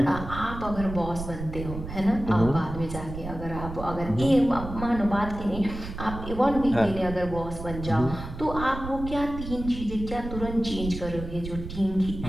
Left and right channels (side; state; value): right; noise; rumble, 9 dB below the sound